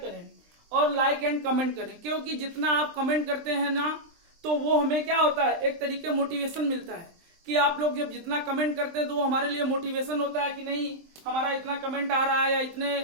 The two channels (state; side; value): late; left; 23 ms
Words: करें और लाइक एंड कमेंट करें। क्योंकि जितना आप कमेंट करते हैं ना, तो वो हमें क्या होता है, एक तरीके मोटिवेशन मिलता है कि आप लोग जब जितना कमेंट करते हैं तो वो हमारे लिए मोटिवेशन होता है कि नहीं, हमारा इतना कमेंट आ रहा है, या